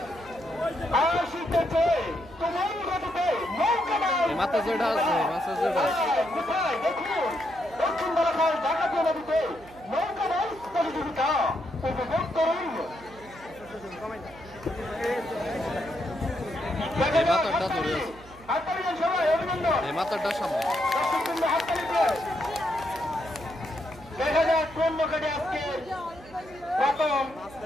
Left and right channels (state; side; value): noise; right; hum, 21 dB below the sound